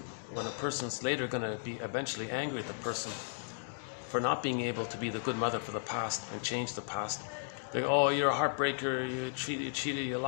when a person's later going to be eventually angry at the person for not being able to be the good mother for the past and change the past, they go, oh, you're a heartbreaker, you cheated, you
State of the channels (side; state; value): right; silent; digital silence